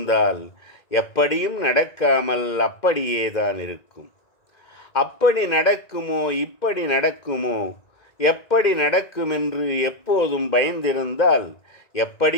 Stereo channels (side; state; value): right; late; 1.9 ms